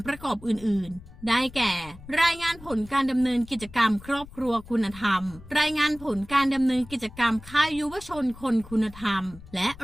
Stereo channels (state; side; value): noise; left; rumble, 18 dB below the sound